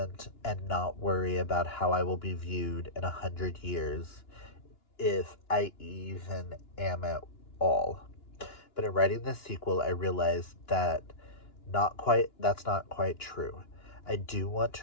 and not worry about how I will be viewed in 100 years, if I even am at all. But in writing this sequel, I realized that's not quite true. I do want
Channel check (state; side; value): late; right; 2.9 ms